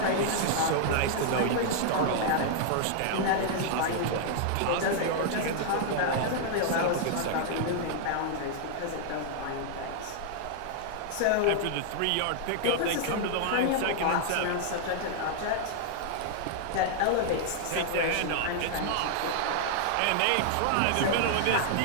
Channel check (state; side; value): different; both; correlation -0.01